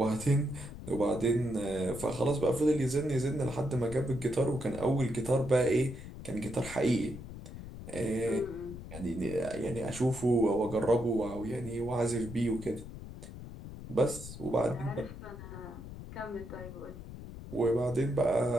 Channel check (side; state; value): left; noise; rumble, 12 dB below the sound